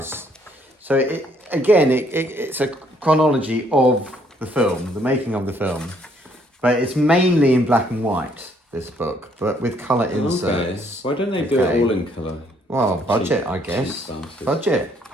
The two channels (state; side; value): normal; both; correlation 0.67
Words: So it's a chronology of the film, the making of the film. But it's mainly in black and white, this book, but with colour inserts. Why don't they do it all in colour? Well, budget, I guess. Budget.